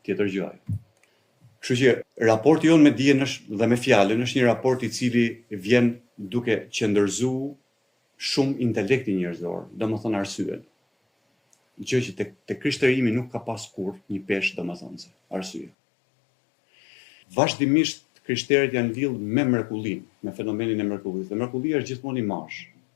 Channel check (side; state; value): right; drops out; at 15.7 s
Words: tjetër gjë ai. Kështu që raporti jon me dijen dhe me fjalën është një raport i cili vjen duke qëndërzuar shumë intelektin njerëzor, domethënë arsyen. Gjë që te krishterimi nuk ka pas kurrë një peshë domethënëse, arsye. Vazhdimisht krishterët janë lidhur me mrekullinë, me fenomenin e mrekullisë. Dhe mrekullia është gjithmonë imazh.